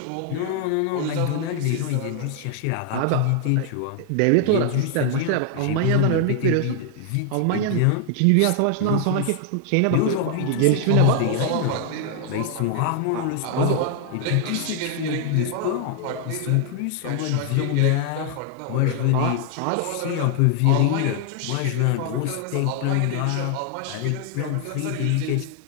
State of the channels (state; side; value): different; both; correlation 0.00